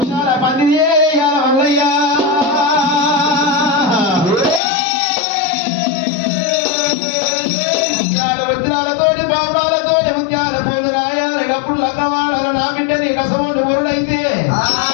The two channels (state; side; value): drops out; right; at 4.6 s